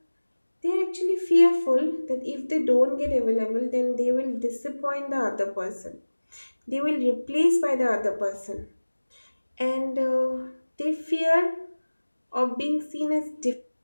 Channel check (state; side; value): inverted; both; correlation -1.00